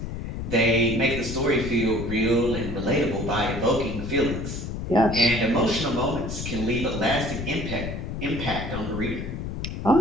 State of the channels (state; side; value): noise; left; rumble, 6 dB below the sound